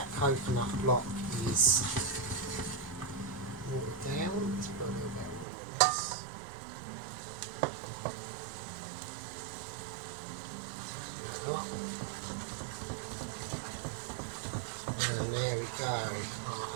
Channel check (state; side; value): drops out; left; at 5.5 s